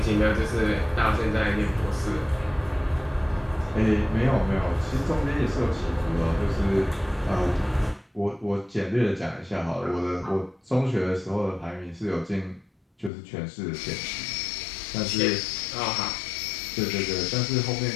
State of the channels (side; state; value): right; drops out; at 13.1 s